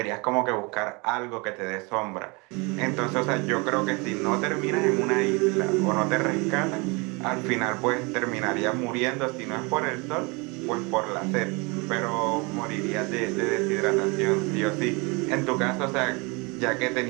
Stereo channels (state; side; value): quieter; left; 28.7 dB